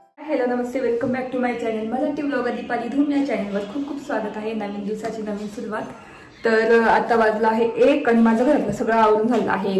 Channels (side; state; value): both; identical; correlation 1.00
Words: हॅलो नमस्ते, welcome back to my channel Marathi blogger Deepali Dhoom. या चॅनलवर खूप खूप स्वागत आहे. नवीन दिवसाची नवीन सुरुवात. तर आता वाजला आहे 1 आणि माझं घरातलं सगळं आवरून झालं आहे.